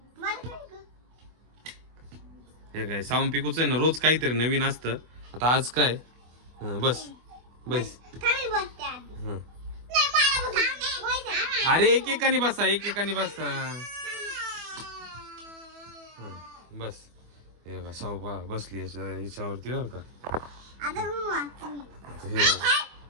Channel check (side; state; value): left; late; 24 ms